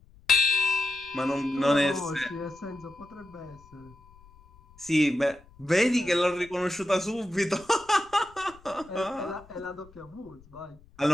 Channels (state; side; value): noise; left; rumble, 25 dB below the sound